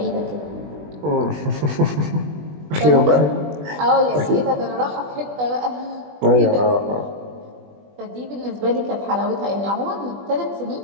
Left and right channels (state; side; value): late; left; 20 ms